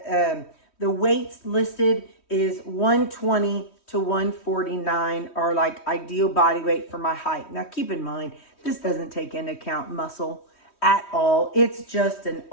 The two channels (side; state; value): right; late; 3.1 ms